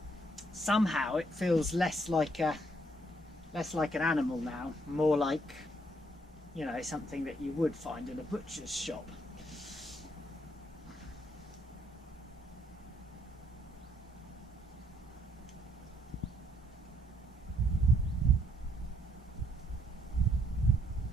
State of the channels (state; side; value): normal; both; correlation 0.70